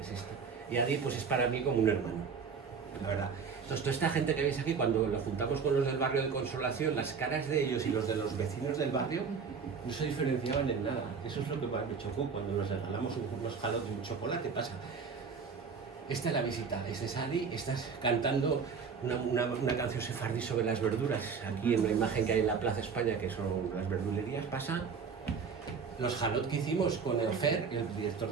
es esta. Y Adi pues es para mí como un hermano, la verdad. Entonces, toda esta gente que veis aquí, cuando lo juntamos con los del barrio de Consolación, las caras de ellos y los de los vecinos del barrio no se diferenciaban en nada. Eso es lo que me chocó cuando nos regalamos unos jalotes y un chocolate. Pasa. Esta es la visita, este es Adi, estás cantando una canción sefardí sobre las verduras. Aquí en la imagen que hay en la Plaza España, que son las verdulerías, pasa. Los jalot que hicimos con el Fer, el director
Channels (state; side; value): quieter; left; 5.7 dB